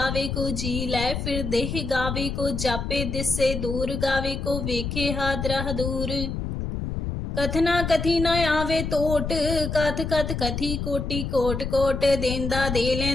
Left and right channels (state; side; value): noise; left; rumble, 4 dB below the sound